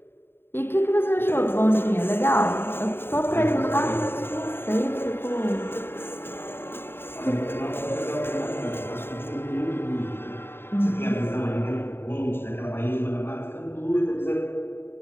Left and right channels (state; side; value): late; right; 0.11 ms